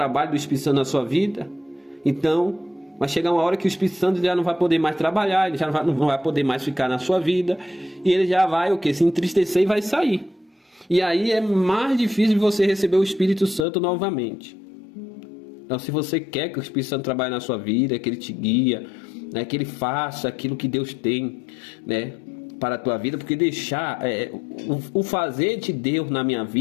do Espírito Santo na sua vida, então vai chegar uma hora que o Espírito Santo já não vai poder mais trabalhar, ele já não vai poder mais ficar na sua vida, e ele já vai se entristecer e vai sair. E aí é mais difícil de você receber o Espírito Santo novamente. Então, se você quer que o Espírito Santo trabalhe na sua vida, que ele te guia, né, que ele faça aquilo que Deus tem, né, para a tua vida, porque deixar o fazer de Deus na minha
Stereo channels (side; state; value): right; drops out; at 13.7 s